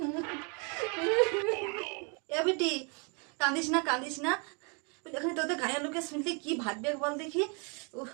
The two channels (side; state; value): left; quieter; 35.1 dB